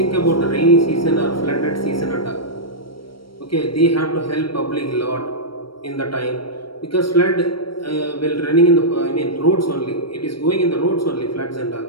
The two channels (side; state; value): right; late; 0.74 ms